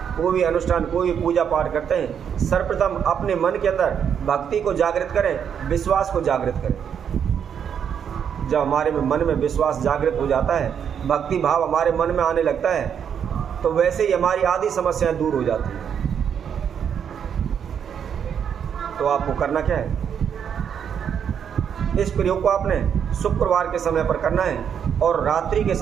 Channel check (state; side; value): quieter; left; 8.0 dB